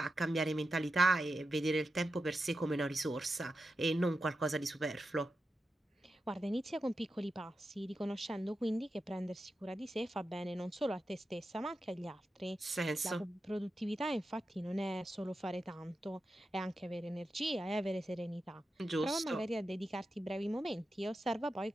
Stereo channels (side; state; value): both; normal; correlation 0.90